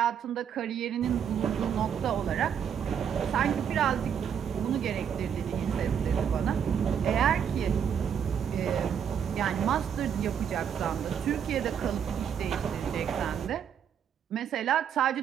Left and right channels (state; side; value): quieter; left; 8.2 dB